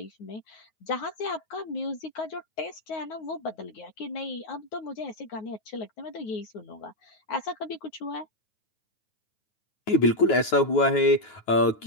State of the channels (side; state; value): right; late; 9.3 ms